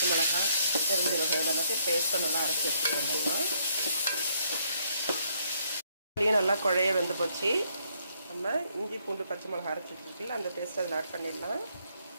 மிளகாய், தெரிஞ்ச வகைகள் எல்லாத்தையும் பேஸ்ட்டை நல்லா அரைச்சி எடுத்துக்கிறோம்னா நல்லா குழைய வெந்து போச்சு. நம்ம இஞ்சி, பூண்டு, பச்சை மிளகாய் அரைச்சி வச்சுருக்கல அந்த பேஸ்ட் அதில் ஆட் பண்ணிடலாம்.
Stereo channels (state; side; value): inverted; both; correlation -0.70